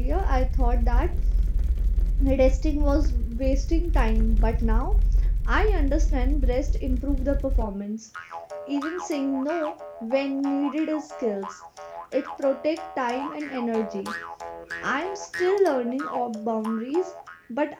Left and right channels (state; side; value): identical; both; correlation 1.00